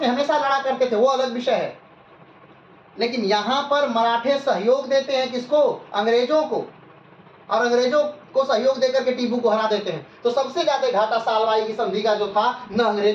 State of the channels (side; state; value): both; identical; correlation 1.00